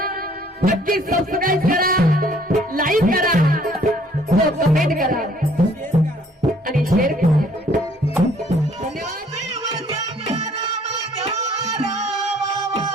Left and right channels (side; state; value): both; normal; correlation 0.60